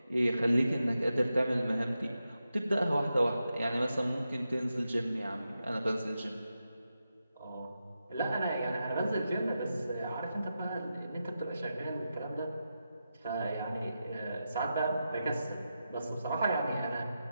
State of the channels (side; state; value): both; inverted; correlation -0.89